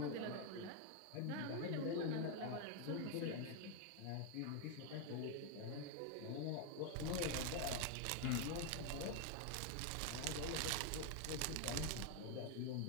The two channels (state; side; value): different; both; correlation 0.01